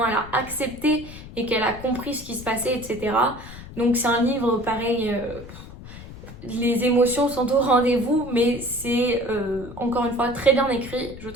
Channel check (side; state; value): left; noise; rumble, 15 dB below the sound